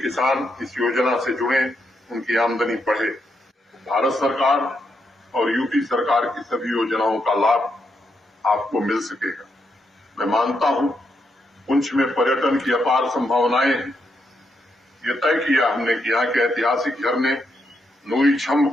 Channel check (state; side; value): normal; both; correlation 0.80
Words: किसान इस योजना से जुड़े, उनकी आमदनी बढ़े। भारत सरकार और यूपी सरकार की सभी योजनाओं का लाभ आपको मिल सकेगा। मैं मानता हूं पुंछ में पर्यटन की अपार संभावनाएं हैं। ये तय किया हमने कि यहाँ के ऐतिहासिक झरने नूरी छम्ब